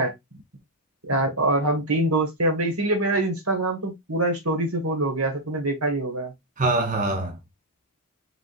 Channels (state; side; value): normal; both; correlation -0.04